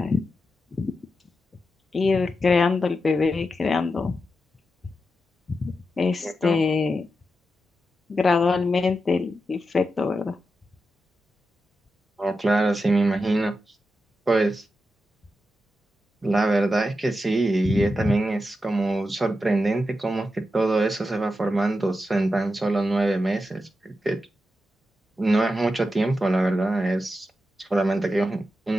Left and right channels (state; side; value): normal; both; correlation 0.89